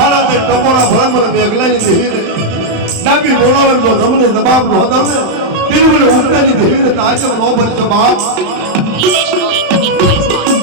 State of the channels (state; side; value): late; left; 35 ms